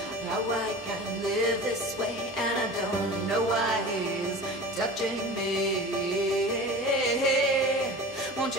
how I can live this way, and I don't know why he's touching me. Won't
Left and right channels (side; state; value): both; normal; correlation 0.36